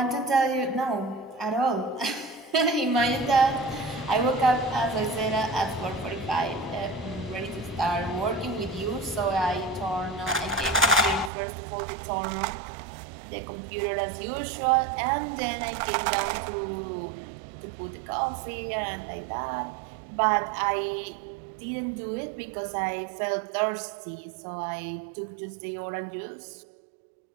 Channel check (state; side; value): drops out; left; at 11.3 s